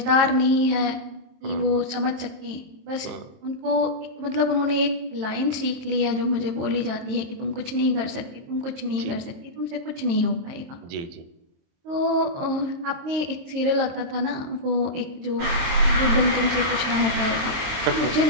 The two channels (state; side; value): late; left; 22 ms